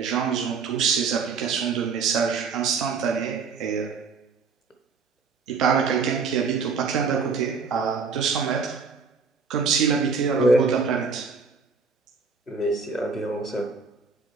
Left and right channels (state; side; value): quieter; left; 5.0 dB